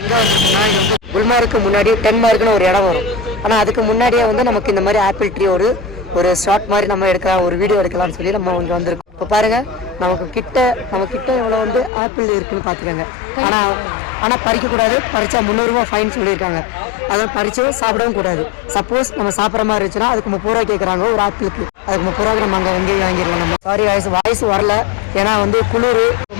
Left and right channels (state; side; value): drops out; right; at 11.9 s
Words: வந்திருக்கோம்னா இது வந்து குல்மார்க்கு முன்னாடி டென்மார்க்னு ஒரு இடம் வரும். ஆனால் அதுக்கு முன்னாடியே வந்து நமக்கு இந்த மாதிரி ஆப்பிள் ட்ரீ ஒரு ஷார்ட் மாதிரி நம்ம எடுக்கலாம், ஒரு வீடியோ எடுக்கலாம்னு சொல்லி நம்ம இங்கே வந்திருக்கோம். இப்போ பாருங்கள், நம்ம கிட்ட இவ்வளோ வந்து ஆப்பிள் இருக்குன்னு பார்த்துக்கோங்க. ஆனால் பறிக்கக்கூடாது, பறிச்சா 300 ரூபா ஃபைன் சொல்லியிருக்காங்க. அதை பறிச்சும் சாப்பிடவும் கூடாது. சப்போஸ் நம்ம சாப்பிட்ற மாதிரி இருந்துச்சுன்னா அதுக்கு 30 ரூபா கேட்குறாங்க ஒரு ஆப்பிளுக்கு. அதுக்கு 30 ரூபாய்க்கு நம்ம அங்கே எங்கேயும் வாங்கிடலாம். நம்ம சாரி வாய்ஸ் வரல, ஏன்னா வந்து குளிர்